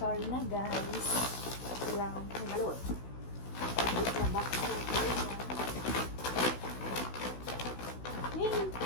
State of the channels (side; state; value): right; late; 16 ms